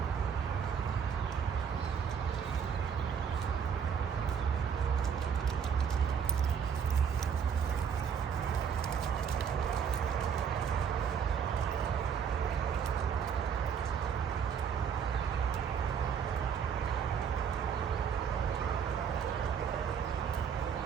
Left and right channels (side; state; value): left; quieter; 7.2 dB